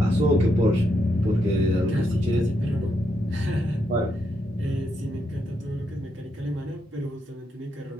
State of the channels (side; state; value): both; normal; correlation 0.80